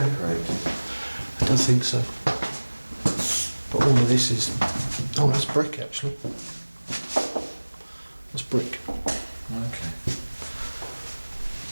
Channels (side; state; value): both; inverted; correlation -1.00